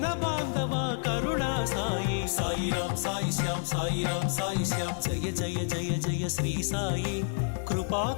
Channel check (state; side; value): silent; right; 58 dB below the other